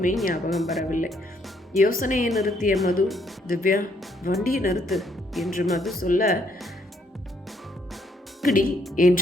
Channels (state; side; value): normal; both; correlation 0.70